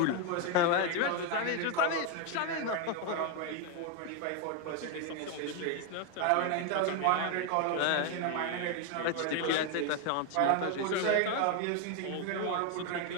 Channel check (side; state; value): both; different; correlation 0.01